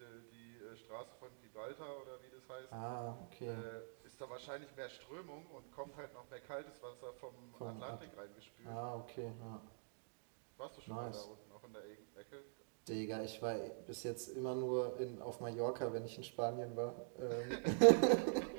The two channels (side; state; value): left; silent; digital silence